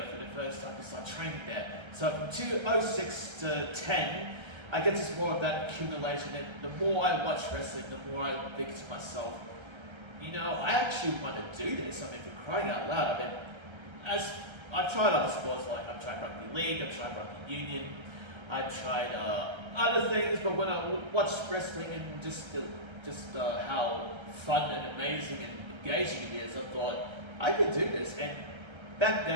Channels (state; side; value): late; left; 1.3 ms